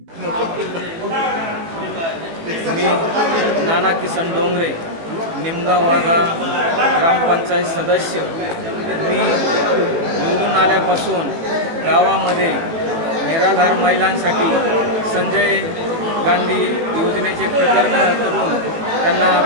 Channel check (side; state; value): left; late; 18 ms